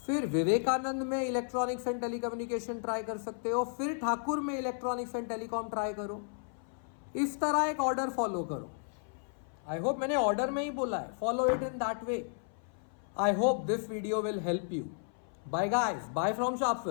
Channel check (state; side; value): silent; right; 56 dB below the other